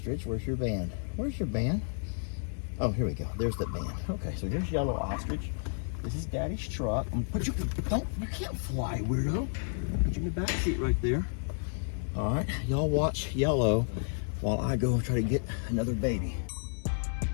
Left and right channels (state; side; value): silent; right; 57 dB below the other